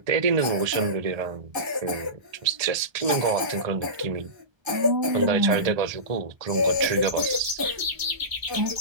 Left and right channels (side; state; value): left; late; 1.3 ms